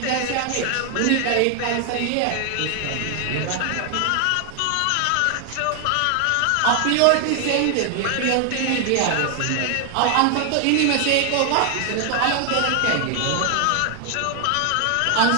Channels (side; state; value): both; different; correlation 0.00